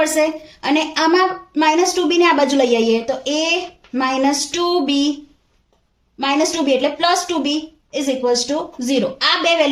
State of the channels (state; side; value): identical; both; correlation 1.00